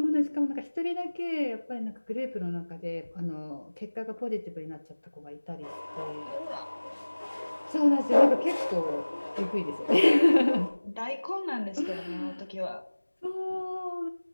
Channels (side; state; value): both; inverted; correlation -1.00